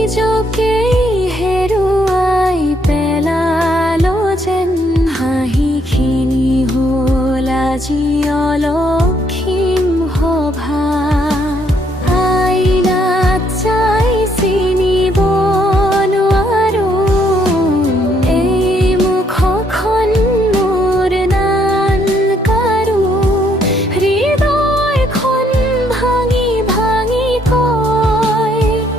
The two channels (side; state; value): both; normal; correlation 0.70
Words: হেৰুৱাই পেলালো যেন হাঁহিখিনি হ'ল আজি অলক্ষীম সভা আইনাত চাই চিনিব নোৱাৰো এই মুখখন মোৰ নান কাৰো হৃদয়খন ভাঙি ভাঙি কয়